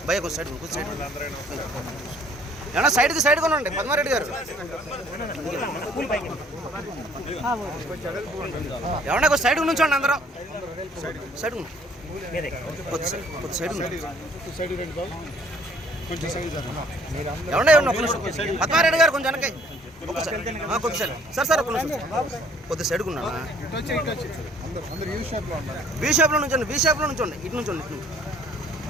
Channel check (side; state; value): both; normal; correlation 0.58